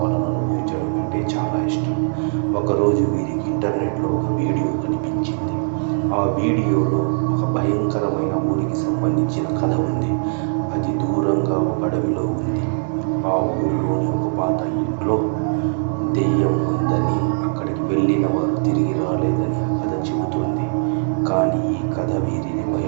అనుభవించడం అంటే చాలా ఇష్టం. ఒకరోజు వీరికి ఇంటర్నెట్లో ఒక వీడియో కనిపించింది. ఆ వీడియోలో ఒక భయంకరమైన ఊరికి సంబంధించిన కథ ఉంది. అది దూరంగా ఒక అడవిలో ఉంది. ఆ ఊరిలోని ఒక పాత ఇంట్లో దెయ్యం ఉందని, అక్కడికి వెళ్ళిన వారు తిరిగి రాలేదని ఆ కథ చెబుతోంది. కానీ ఈ కథ వీరిని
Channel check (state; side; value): silent; left; digital silence